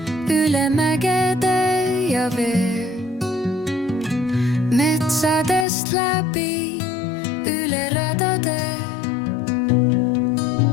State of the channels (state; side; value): drops out; right; at 5.7 s